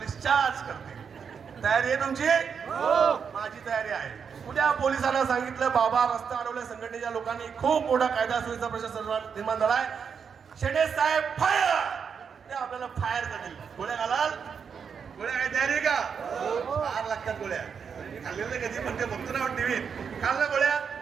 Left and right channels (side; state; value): left; quieter; 6.6 dB